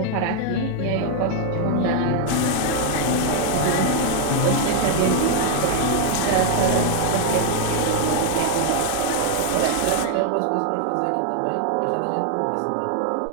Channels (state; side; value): different; both; correlation 0.01